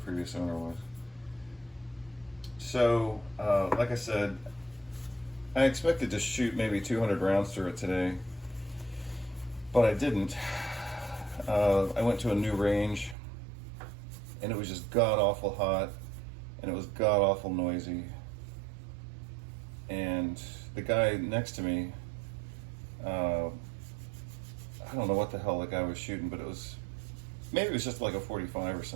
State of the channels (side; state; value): left; drops out; at 13.2 s